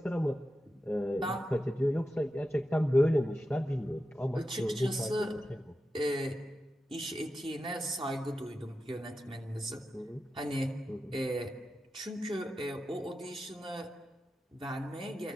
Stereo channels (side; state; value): both; normal; correlation 0.91